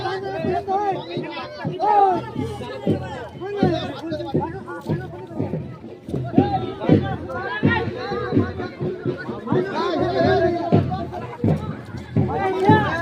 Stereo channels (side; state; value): both; identical; correlation 1.00